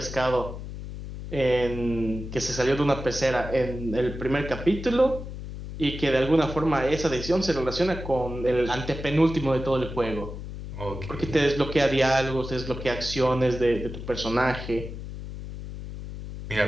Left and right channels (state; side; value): noise; left; hum, 9 dB below the sound